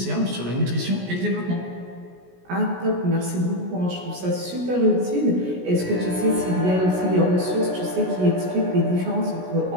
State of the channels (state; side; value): late; left; 17 ms